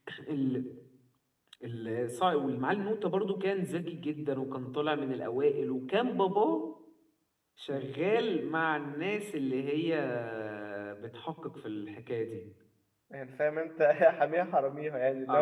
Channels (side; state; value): both; identical; correlation 1.00